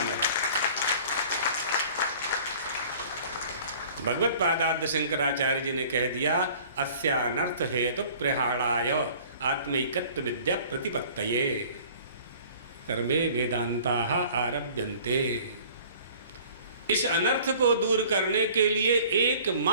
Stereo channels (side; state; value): both; inverted; correlation -0.49